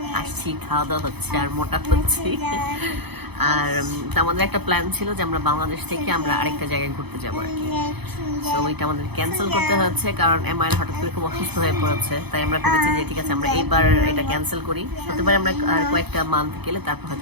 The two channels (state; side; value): late; left; 0.98 ms